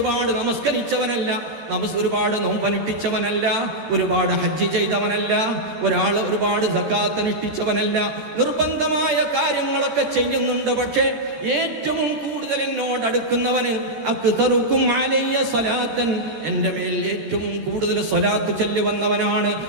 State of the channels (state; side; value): late; left; 13 ms